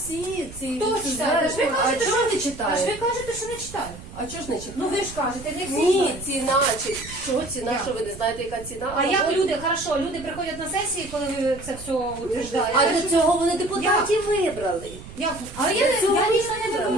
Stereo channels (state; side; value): noise; right; rumble, 15 dB below the sound